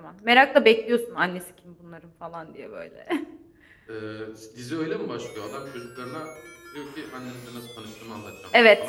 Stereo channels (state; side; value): identical; both; correlation 1.00